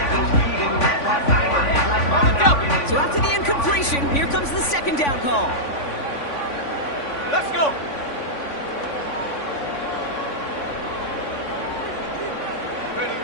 So after the incompletion, here comes the second down call. Let's go. Ready.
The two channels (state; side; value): late; right; 3.5 ms